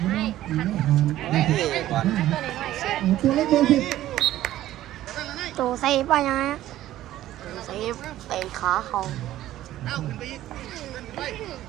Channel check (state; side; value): quieter; left; 13.9 dB